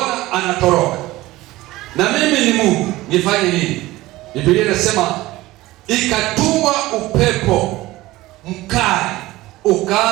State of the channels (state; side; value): quieter; left; 18.1 dB